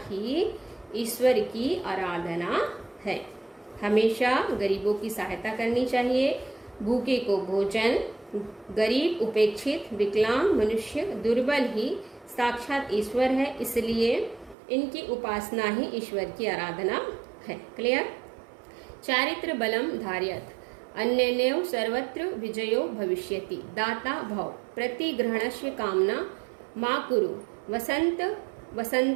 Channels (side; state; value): left; drops out; at 14.6 s